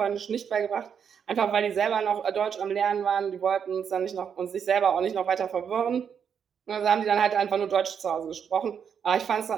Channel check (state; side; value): quieter; left; 7.4 dB